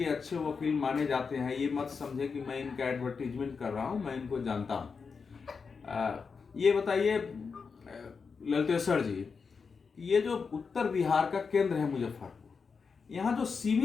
अच्छे वकील माने जाते हैं। ये मत समझे कि मैं इनका एडवर्टीजमेंट कर रहा हूँ, मैं इनको जानता हूँ। ये बताइए ललितेश्वर जी, ये जो उत्तर बिहार का केंद्र है मुजफ्फरपुर, यहाँ जो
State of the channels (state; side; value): quieter; right; 5.3 dB